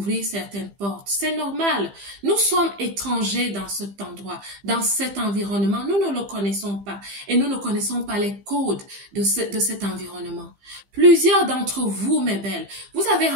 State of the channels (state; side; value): late; left; 15 ms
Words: certaines portes. C'est normal. Nous sommes étrangers dans cet endroit, dans cet environnement. Nous ne le connaissons pas et nous ne connaissons pas les codes de cet environnement. Plusieurs d'entre vous, mes belles, vous avez